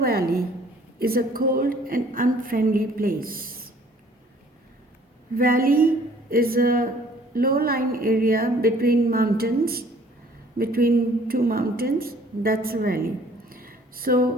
is a cold and unfriendly place. Valley is a low-lying area between two mountains. That's a valley.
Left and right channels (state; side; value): normal; both; correlation 0.56